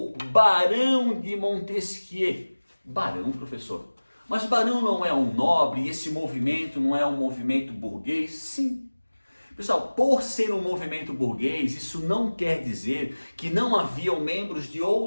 Barão de Montesquieu. Barão, professor. Mas Barão não é um nobre e esse movimento não é um movimento burguês? Sim. Pessoal, por ser um movimento burguês, isso não quer dizer que não haviam membros de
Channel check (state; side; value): inverted; both; correlation -1.00